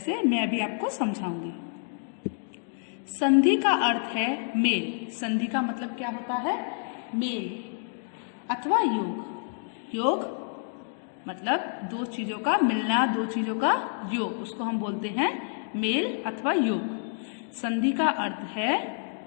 मैं अभी आपको समझाऊंगी। संधि का अर्थ है मेल। संधि का मतलब क्या होता है? मेल अथवा योग। योग मतलब दो चीजों का मिलना, दो चीजों का योग, उसको हम बोलते हैं मेल अथवा योग। संधि का अर्थ है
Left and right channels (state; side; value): silent; right; 59 dB below the other